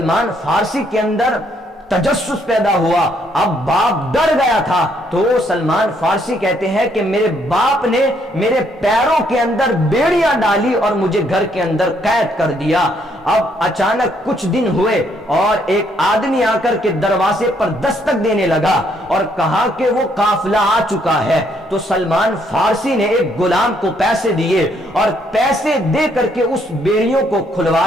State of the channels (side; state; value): both; normal; correlation 0.70